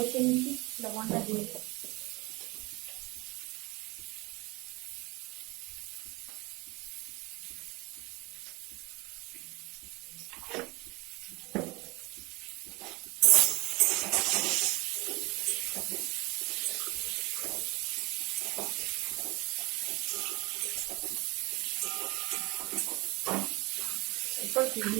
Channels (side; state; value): left; quieter; 24.2 dB